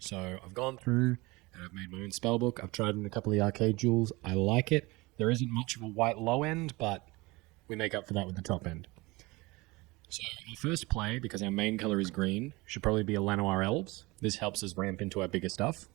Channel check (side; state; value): left; quieter; 23.0 dB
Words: I've gone through and I've made my own spellbook. I've tried in a couple of the arcade jewels. I like it. There isn't much of a white low end, but we make up for that with the top end. So our first play, because our main colour is green, should probably be a Llanowar Elves. This helps us ramp into our bigger stuff.